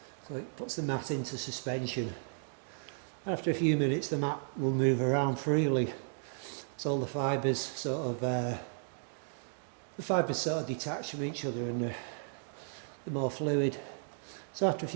so it puts the mat into suspension. After a few minutes the mat will move around freely, so all the fibres sort of detach from each other and they're more fluid. So after a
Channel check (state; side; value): silent; left; digital silence